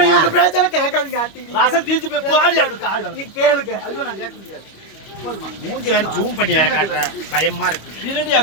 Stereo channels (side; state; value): right; late; 25 ms